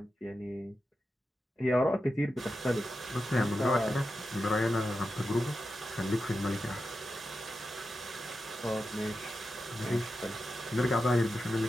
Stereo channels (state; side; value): normal; both; correlation 0.90